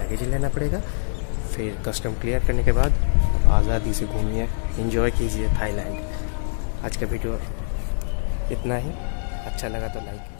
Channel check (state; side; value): silent; right; digital silence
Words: लेना पड़ेगा। फिर कस्टम क्लियर करने के बाद आज़ादी से घूमिए, एंजॉय कीजिए थाईलैंड। आज का वीडियो इतना ही, अच्छा लगा तो